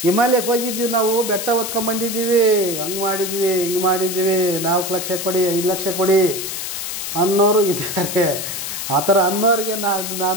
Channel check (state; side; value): noise; left; hiss, 5 dB below the sound